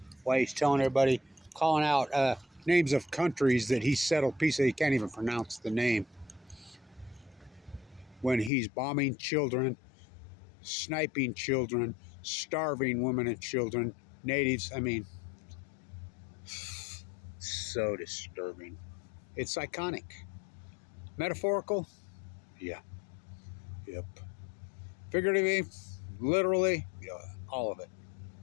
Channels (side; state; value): right; drops out; at 8.5 s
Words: while he's telling everybody, calling out names of countries that he settled peace. He can't even pronounce the name. When he's bombing children, sniping children, starving women and children, natives. I mean, so disturbing. It's iconic. Metaphorical? Yeah. Yep. Figuratively, literally, yeah, all of it.